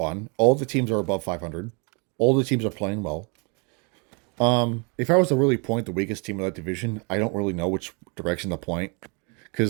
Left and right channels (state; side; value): quieter; left; 33.4 dB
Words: All the teams are above 500. All the teams are playing well. If I was to really point the weakest team of that division, I don't really know which direction to point.